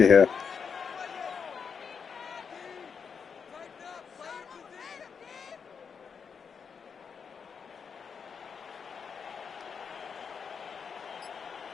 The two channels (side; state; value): right; quieter; 6.3 dB